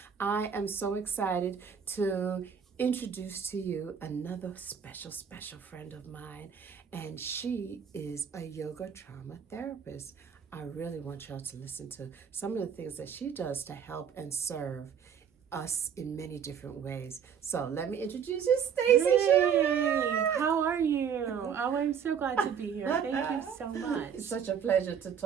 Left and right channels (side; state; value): left; quieter; 7.5 dB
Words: I am so excited to introduce to you another special friend of mine, and she is a yoga trauma therapist. I really want y'all to listen to some of the things that she does to help and serve us in many different ways. So let me introduce you, Stacy. Hey, how are you? Oh, I'm so glad to be here. Thank you so much. It's such a pleasure to